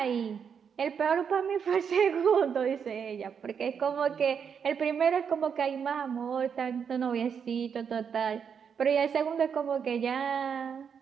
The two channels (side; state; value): left; quieter; 7.0 dB